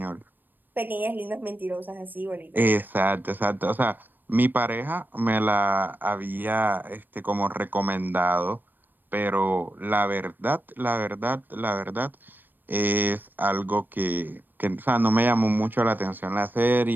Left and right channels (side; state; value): left; late; 0.092 ms